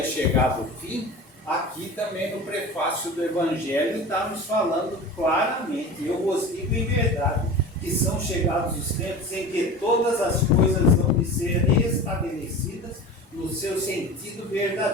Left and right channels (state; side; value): normal; both; correlation 0.34